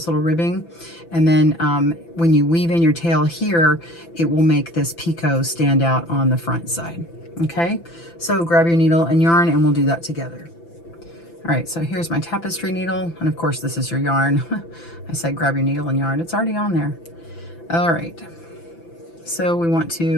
little ribbing. And then when you weave in your tail here, it will make this picot stand out on the front side. Okay, so grab your needle and yarn, and we'll do that together. All right, so here's my tapestry needle, and of course this is your yarn. I said grab your needle and yarn, it's already on there. All right, so we want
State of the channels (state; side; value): late; right; 5.9 ms